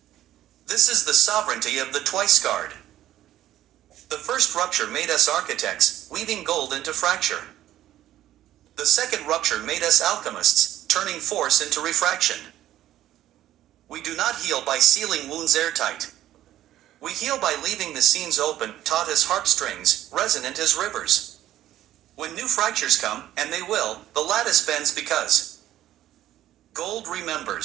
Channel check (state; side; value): quieter; left; 13.1 dB